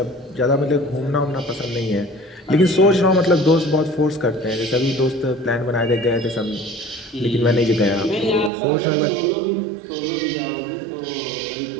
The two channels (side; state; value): left; drops out; at 8.5 s